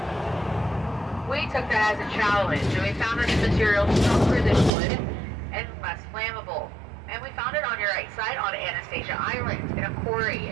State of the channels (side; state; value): left; drops out; at 4.7 s